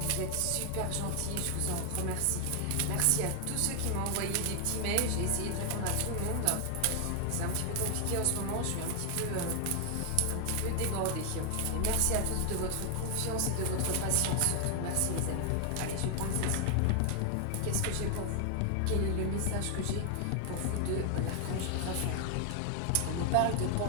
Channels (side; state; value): both; different; correlation 0.00